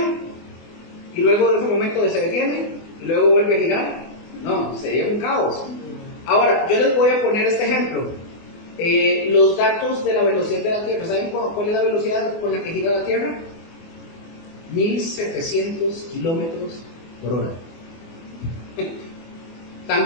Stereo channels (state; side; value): late; right; 24 ms